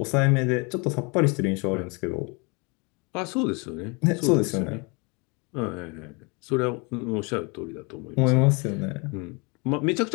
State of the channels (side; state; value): right; quieter; 30.4 dB